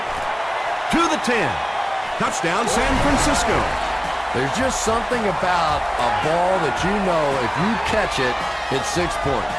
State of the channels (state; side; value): identical; both; correlation 1.00